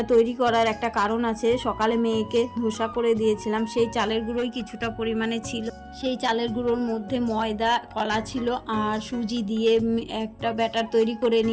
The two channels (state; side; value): identical; both; correlation 1.00